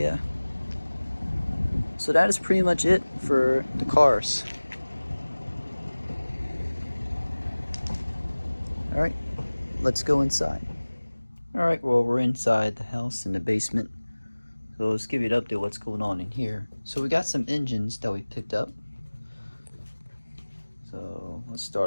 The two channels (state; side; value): inverted; both; correlation -1.00